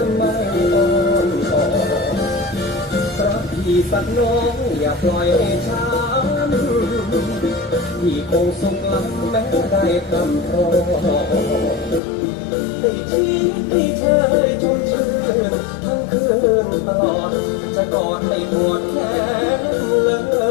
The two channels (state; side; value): drops out; right; at 12.0 s